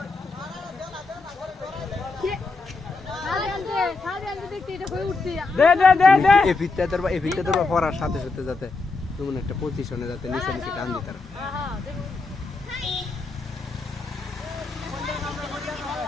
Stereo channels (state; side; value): quieter; right; 3.8 dB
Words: এফিতে তোর পড়ার সাথে সাথে যাতে তেমন একটা পজিশনে যাতে নিচে নিচে টান দিতে